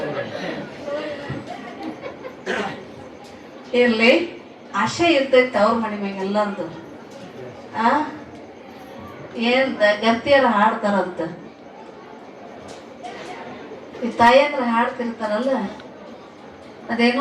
ಇರ್ಲಿ, ಆಶೆ ಇರ್ತೈತಿ ತವ್ರ ಮನೆ ಮ್ಯಾಗ ಎಲ್ಲರದು. ಏನ್ ಗರ್ತಿಯರ ಹಾಡ್ತಾರಂತ, ಈ ತಾಯಿಯಂದ್ರ ಹಾಡ್ತಿರ್ತಾರಲ್ಲ,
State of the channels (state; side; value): identical; both; correlation 1.00